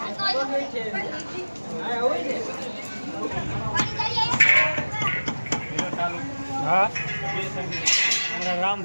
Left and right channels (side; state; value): both; inverted; correlation -1.00